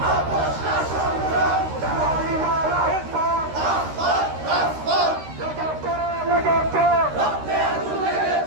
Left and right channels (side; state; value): left; late; 13 ms